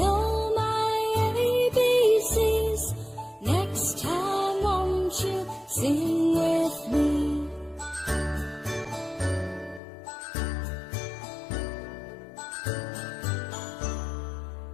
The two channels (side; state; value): right; drops out; at 9.8 s